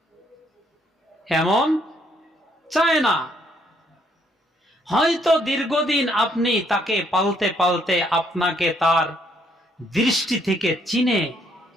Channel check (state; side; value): normal; both; correlation 0.69